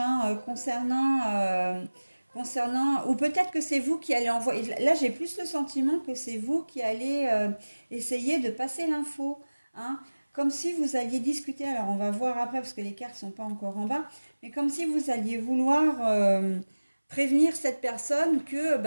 concernant, ou peut-être que c'est vous qui allez envoyer. Là, j'ai plus le sentiment que c'est vous qui allez essayer de passer l'info, hein. Comme si vous alliez discuter, alors on va voir après parce que les cartes ne sont pas encore en bas, mais comme si vous alliez vouloir prévenir cette personne que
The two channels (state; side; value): inverted; both; correlation -1.00